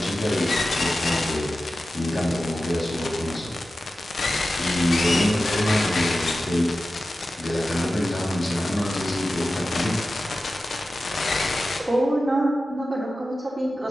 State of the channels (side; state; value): both; normal; correlation 0.93